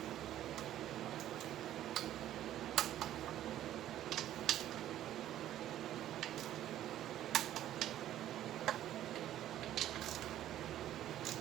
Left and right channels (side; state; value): left; quieter; 12.4 dB